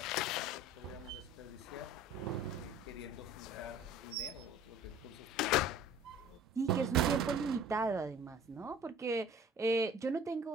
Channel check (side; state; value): both; normal; correlation 0.47